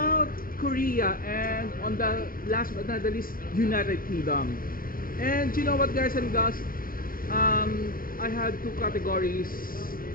Korea, and on the last but not the least, United Kingdom. And you know what guys and girls, I had two categories,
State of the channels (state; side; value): late; right; 0.41 ms